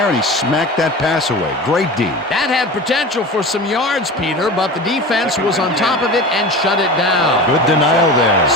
and he smacked that pass away. Great D. That had potential for some yards, Peter, but the defense was on top of it and shut it down. Good denial there.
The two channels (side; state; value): both; normal; correlation 0.32